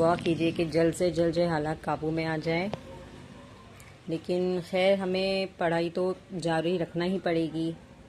कीजिए कि जल्द से जल्द जो हालात काबू में आ जाए। लेकिन खैर हमें पढ़ाई तो जारी रखना ही पड़ेगी।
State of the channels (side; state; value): both; identical; correlation 1.00